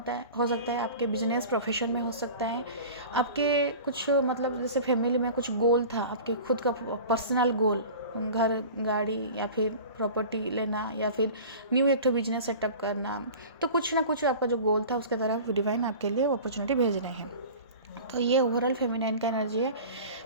हो सकता है, आपके बिजनेस प्रोफेशन में हो सकता है, आपके कुछ मतलब जैसे फैमिली में कुछ गोल था, आपके खुद का पर्सनल गोल, घर गाड़ी या फिर प्रॉपर्टी लेना या फिर न्यू एक बिजनेस सेटअप करना, तो कुछ ना कुछ आपका जो गोल था उसके तरफ डिवाइन आपके लिए अपॉर्चुनिटी भेज रहे हैं। तो ये ओवरऑल फेमिनाइन का एनर्जी है।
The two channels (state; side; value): inverted; both; correlation -0.38